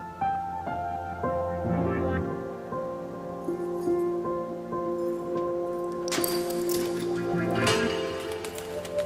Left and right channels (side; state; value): both; identical; correlation 1.00